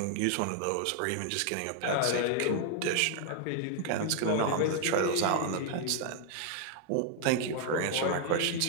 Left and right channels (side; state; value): both; different; correlation 0.00